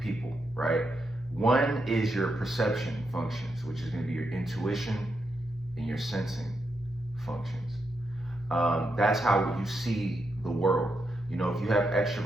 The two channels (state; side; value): normal; both; correlation 0.83